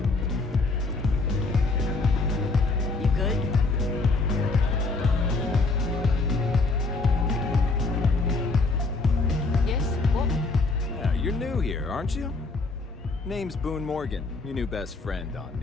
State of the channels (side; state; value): right; quieter; 3.6 dB